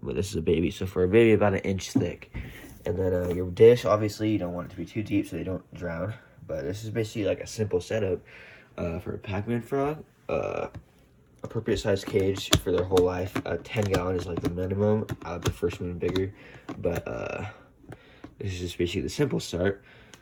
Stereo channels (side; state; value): both; identical; correlation 1.00